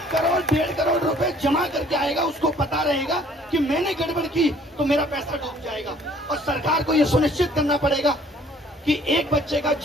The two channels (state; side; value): normal; both; correlation 0.57